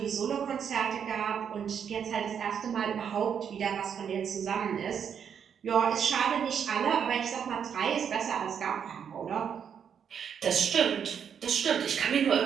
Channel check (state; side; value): quieter; left; 7.7 dB